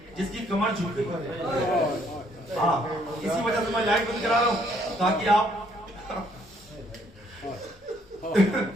جس کی کمر جھک گئی؟ ہاں، اسی وجہ سے میں لائٹ بند کرا رہا ہوں تاکہ آپ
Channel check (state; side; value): normal; both; correlation 0.67